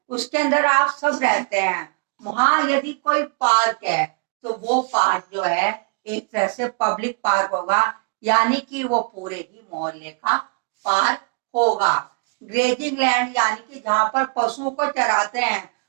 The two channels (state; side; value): quieter; left; 38.6 dB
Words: उसके अंदर आप सब रहते हैं। वहां यदि कोई पार्क है तो वो पार्क जो है एक तरह से पब्लिक पार्क होगा, यानी कि वो पूरे ही मोहल्ले का पार्क होगा। ग्रेजिंग लैंड यानी कि जहां पर पशुओं को चराते हैं,